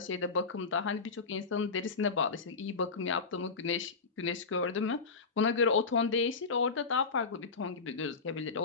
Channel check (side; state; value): right; quieter; 4.6 dB